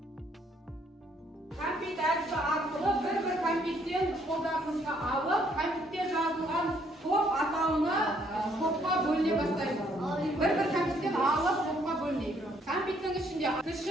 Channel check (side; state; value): both; normal; correlation 0.67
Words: Компьютер әдісі арқылы бір компьютерден қолдарыңызға алып, компьютерде жазылған топ атауына топқа бөліне бастаймыз. Bir компьютерден алып топқа бөлінейік. Компьютердің ішінде